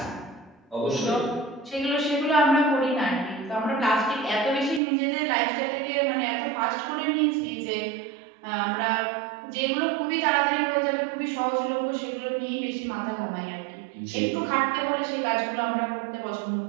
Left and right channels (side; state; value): left; drops out; at 4.8 s